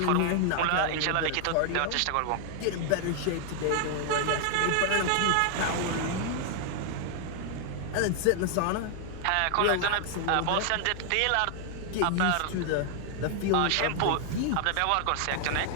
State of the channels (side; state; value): both; different; correlation 0.00